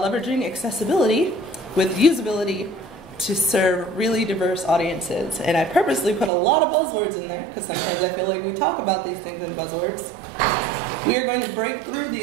Accessibility with Usability to serve really diverse audiences. And I purposely put a lot of buzzwords in there because sometimes I feel like we talk about these things in buzzwords. We are going to break through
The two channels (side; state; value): left; drops out; at 6.3 s